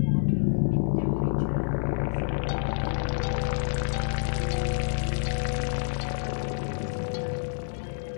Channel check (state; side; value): silent; right; 60 dB below the other